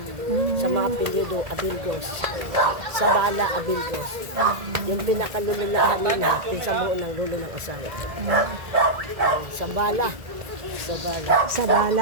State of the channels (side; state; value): left; late; 2.0 ms